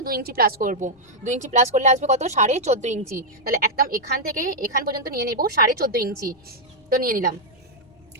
2 ইঞ্চি প্লাস করবো। 2 ইঞ্চি প্লাস করলে আসবে কত, 14.5 ইঞ্চি। তাহলে একদম এখান থেকে এখান পর্যন্ত নিয়ে নেবো 14.5 ইঞ্চি। তো নিয়ে নিলাম।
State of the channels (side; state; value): left; noise; rumble, 30 dB below the sound